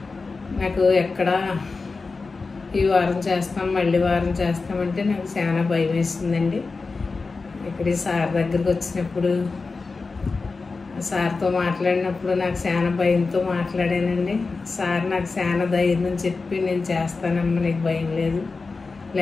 నాకు ఎక్కడ ఈ వారం చేస్తాం మళ్ళీ వారం చేస్తామంటే నాకు చాలా భయం వేసిందండి. ఇక్కడ ఈ సార్ దగ్గరికి వచ్చినప్పుడు సార్తో మాట్లాడినప్పుడు నాకు చాలా భయంతో మాట్లాడానండి. సార్ నాకు చాలా ధైర్యం చెప్పి నేను చేస్తానమ్మా, నీకు భయం లేదు,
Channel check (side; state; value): right; quieter; 4.1 dB